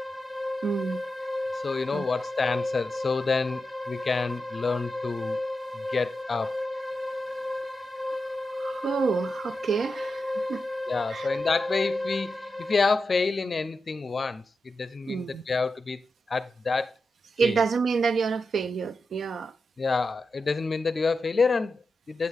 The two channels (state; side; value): normal; both; correlation 0.89